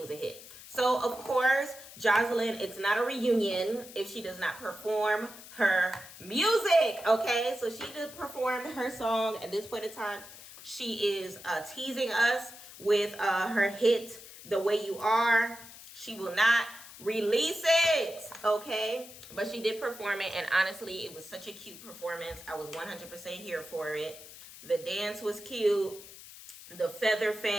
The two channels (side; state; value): left; noise; hiss, 16 dB below the sound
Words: So, of course, Joseline, it's not a reunion if she does not perform her music, okay? So she did perform her song at this point in time. She is teasing us with her hit, The Way You Are. She will not release it, okay? But she did perform it, and honestly, it was such a cute performance. I was 100% here for it. The dance was cute. The feather